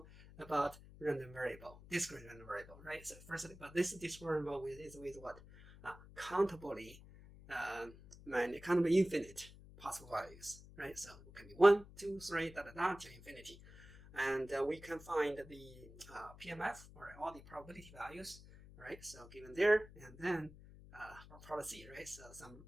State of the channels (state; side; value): noise; left; hum, 18 dB below the sound